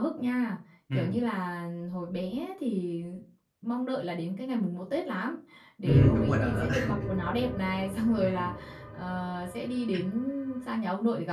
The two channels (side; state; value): both; identical; correlation 1.00